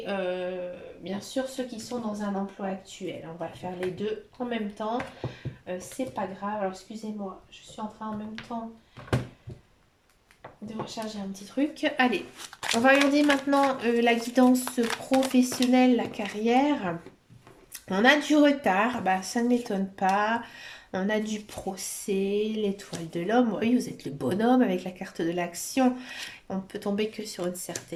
bien sûr ceux qui sont dans un emploi actuel. On va faire les deux en même temps. C'est pas grave. Alors excusez-moi, je suis en train en même temps de recharger un petit truc. Allez, on va regarder maintenant la guidance professionnelle, la carrière. On a du retard, bah, ça ne m'étonne pas. On a du procès, l'étoile de l'homme. Oui, vous êtes le bonhomme avec la carte de l'action. On peut tomber que sur une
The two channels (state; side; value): identical; both; correlation 1.00